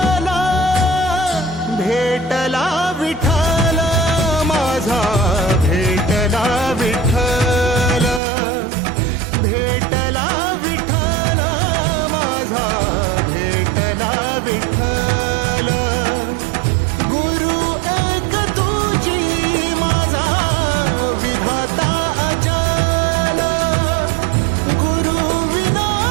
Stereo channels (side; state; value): left; drops out; at 8.2 s